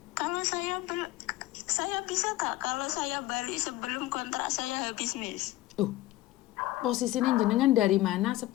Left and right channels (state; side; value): quieter; right; 16.6 dB